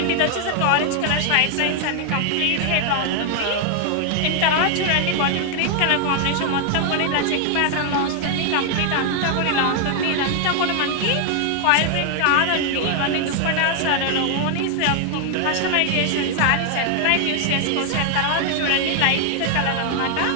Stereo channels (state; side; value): different; both; correlation 0.00